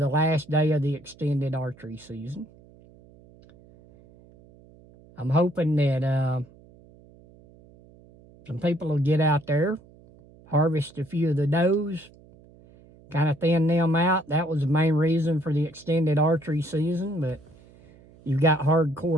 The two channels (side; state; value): right; noise; hum, 25 dB below the sound